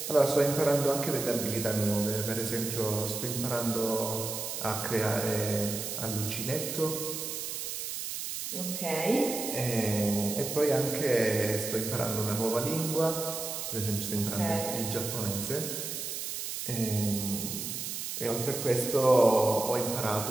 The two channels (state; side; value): noise; right; hiss, 5 dB below the sound